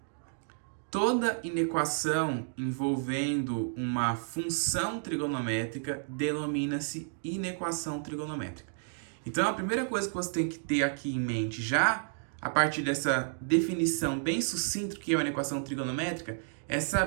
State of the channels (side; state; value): left; silent; digital silence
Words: Toda inequação envolvendo uma função trigonométrica denomina-se inequação trigonométrica. Então a primeira coisa que você tem que ter aqui em mente já, a partir dessa definição bem sucinta do que é uma inequação trigonométrica, é